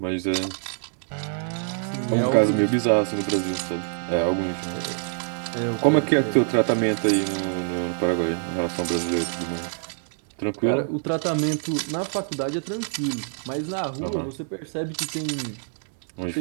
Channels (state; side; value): silent; left; digital silence